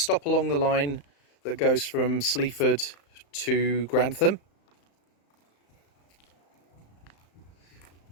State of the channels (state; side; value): late; right; 35 ms